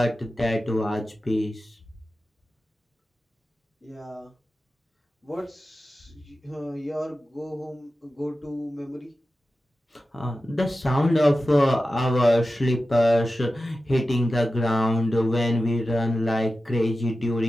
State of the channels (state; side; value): normal; both; correlation 0.93